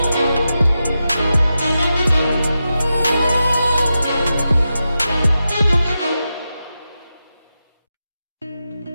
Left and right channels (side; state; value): both; inverted; correlation -0.90